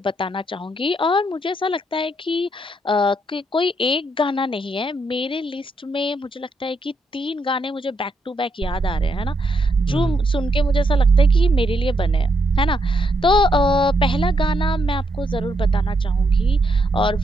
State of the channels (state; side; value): normal; both; correlation 0.78